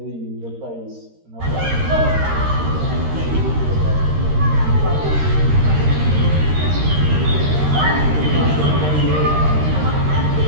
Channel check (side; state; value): left; late; 13 ms